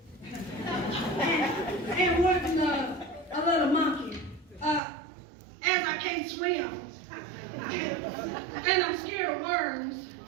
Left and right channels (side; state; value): left; drops out; at 4.8 s